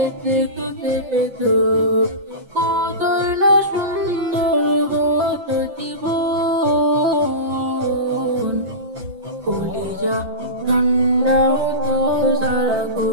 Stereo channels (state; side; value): late; left; 5.8 ms